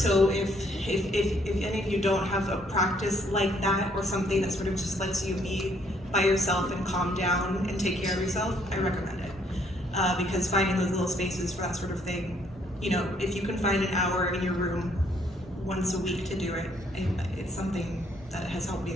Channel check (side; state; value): both; normal; correlation 0.67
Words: if any of you don't have a practice like that, or something that sort of just lets you be by yourself and calm down and take care of yourself, I recommend it. Because finding those little spaces for that sort of thing, if you can find an hour in your room once a week to do it, it's something that has helped me